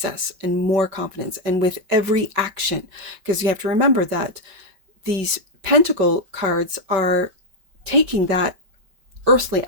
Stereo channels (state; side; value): late; left; 5.2 ms